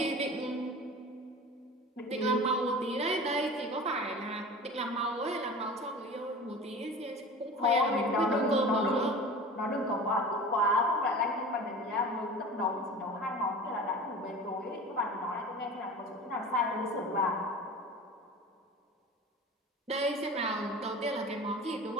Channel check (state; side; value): normal; both; correlation 0.36